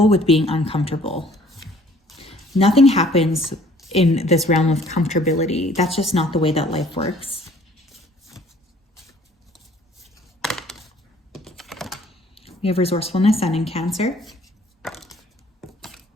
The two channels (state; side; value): normal; both; correlation 0.56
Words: with being uncomfortable. Nothing happens in this realm of comfortability. That's just not the way that life works. We have resourcefulness, Sun in Cancer.